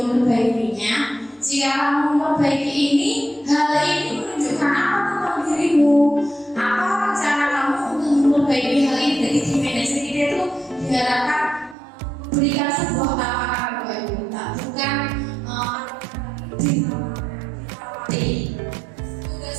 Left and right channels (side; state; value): left; drops out; at 11.8 s